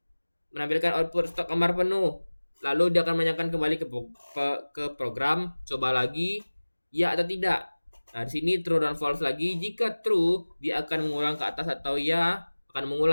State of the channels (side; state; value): both; inverted; correlation -1.00